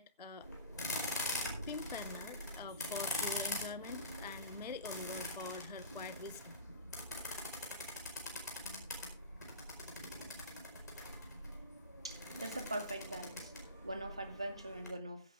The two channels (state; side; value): inverted; both; correlation -0.35